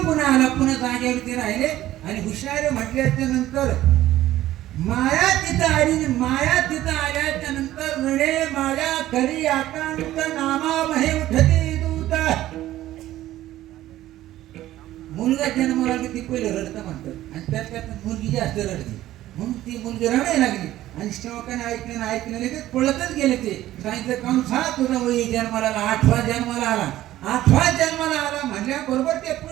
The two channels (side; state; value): left; quieter; 14.4 dB